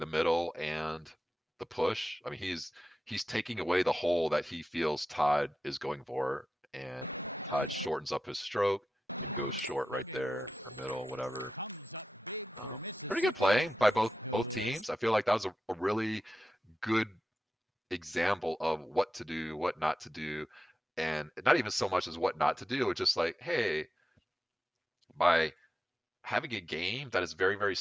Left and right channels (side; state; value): both; normal; correlation 0.91